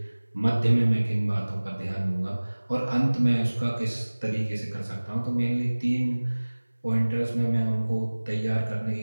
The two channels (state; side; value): inverted; both; correlation -1.00